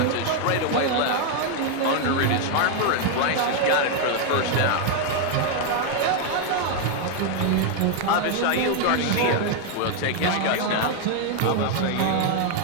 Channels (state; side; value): different; both; correlation 0.01